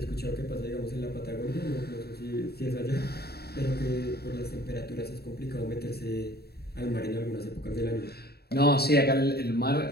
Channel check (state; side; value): late; right; 0.46 ms